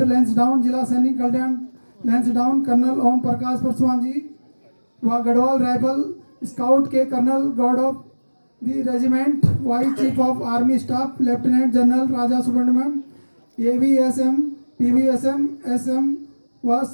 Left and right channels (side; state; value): both; inverted; correlation -1.00